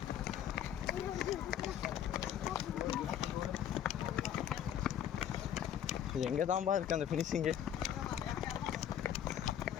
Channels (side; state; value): right; quieter; 10.0 dB